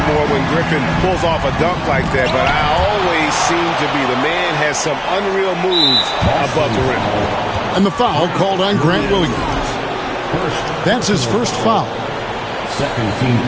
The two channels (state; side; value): identical; both; correlation 1.00